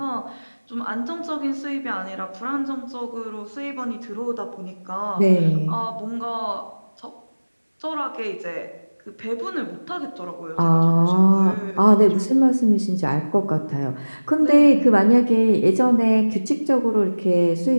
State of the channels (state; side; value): inverted; both; correlation -1.00